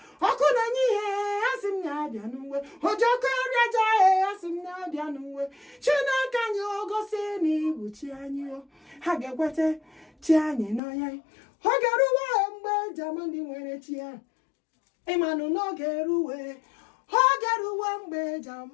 okuna nyihe asimnya bianuwe ojoko riaja asimnya bianuwe Chineke nyo gosini buchi anyo hagekwete chi anyi no ya hogeruwe mgbe jamandi nwere chi ya imanu no geruwe hogeruwe mgbe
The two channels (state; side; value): drops out; right; at 10.8 s